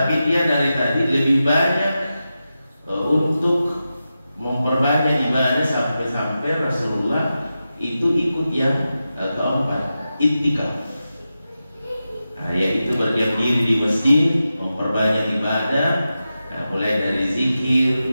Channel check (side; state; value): both; inverted; correlation -0.91